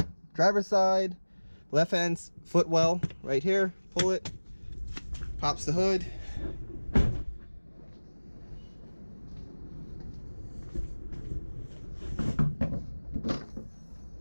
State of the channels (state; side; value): inverted; both; correlation -1.00